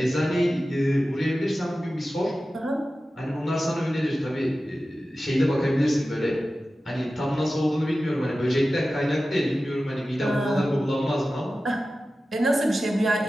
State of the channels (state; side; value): normal; both; correlation 0.94